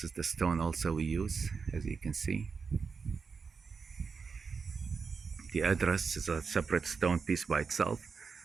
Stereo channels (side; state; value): left; quieter; 5.3 dB